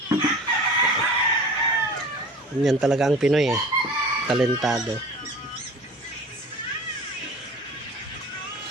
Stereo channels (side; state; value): both; normal; correlation 0.40